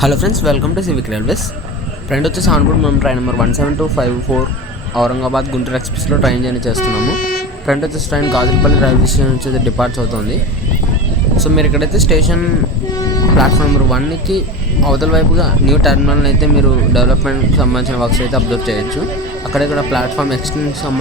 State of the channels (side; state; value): both; normal; correlation 0.27